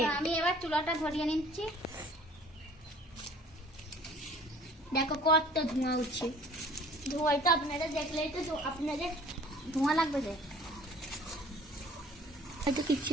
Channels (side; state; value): both; normal; correlation 0.51